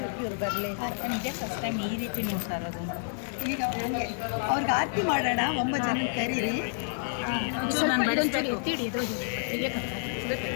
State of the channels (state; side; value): silent; right; digital silence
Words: ಇವ್ರು ಬರಲಿ ನಿಜ ಫಸ್ಟ್ ಟೈಮ್ ಈ ರೀತಿ ನೋಡ್ತಾ ಇರೋದು. ಈಗ ಹಂಗೆ ಅವ್ರಿಗೆ ಆರತಿ ಮಾಡೋಣ. 9 ಜನ ಕರೀರಿ.